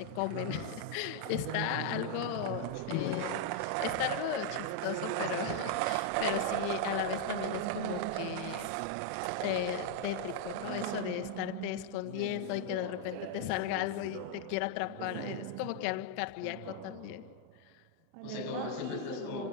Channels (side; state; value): both; different; correlation 0.00